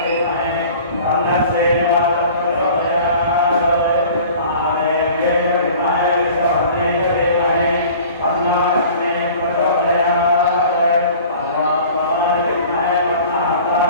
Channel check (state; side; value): inverted; both; correlation -0.45